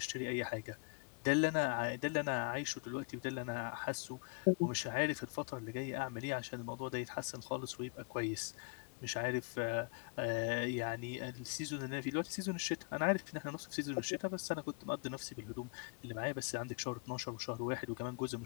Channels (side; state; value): right; quieter; 33.3 dB